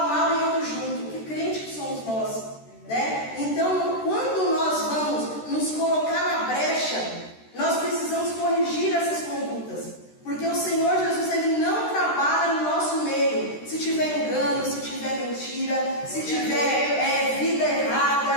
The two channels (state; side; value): late; right; 13 ms